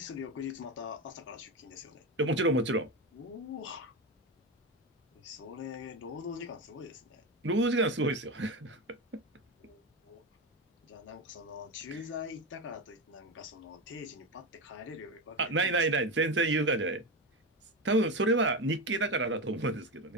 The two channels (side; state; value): both; normal; correlation 0.17